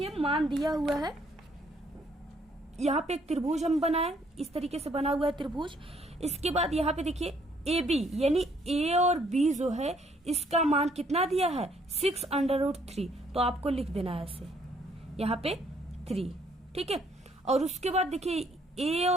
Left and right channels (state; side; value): normal; both; correlation 0.66